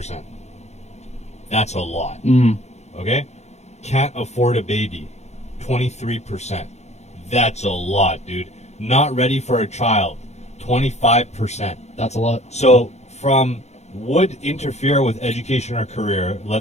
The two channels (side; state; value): right; late; 0.32 ms